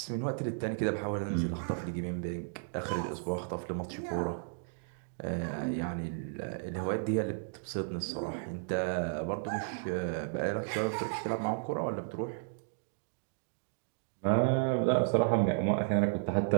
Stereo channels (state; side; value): silent; left; digital silence